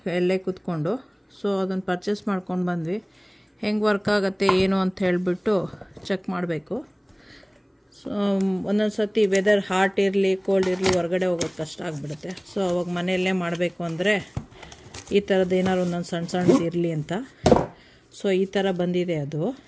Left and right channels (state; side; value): identical; both; correlation 1.00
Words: ಎಲ್ಲೇ ಕೂತ್ಕೊಂಡು. ಸೊ ಅದನ್ನು ಪರ್ಚೇಸ್ ಮಾಡ್ಕೊಂಡು ಬಂದ್ವಿ. ಹೆಂಗೆ ವರ್ಕ್ ಆಗುತ್ತೆ ಏನು ಅಂತ ಹೇಳಿಬಿಟ್ಟು ಚೆಕ್ ಮಾಡಬೇಕು. ಸೊ ಒಂದೊಂದು ಸರ್ತಿ ವೆದರ್ ಹಾಟ್ ಇರಲಿ ಕೋಲ್ಡ್ ಇರಲಿ ಹೊರಗಡೆ ಹೋಗೋದು ಕಷ್ಟ ಆಗಿಬಿಡುತ್ತೆ. ಸೊ ಅವಾಗ ಮನೆಯಲ್ಲೇ ಮಾಡಬೇಕು ಅಂದರೆ ಈ ಥರದ್ದು ಏನಾದ್ರು ಒಂದೊಂದು ಸಣ್ಣ ಸಣ್ಣದು ಇರಲಿ ಅಂತ. ಸೊ ಈ ಥರ ಬಂದಿದೆ. ಅದು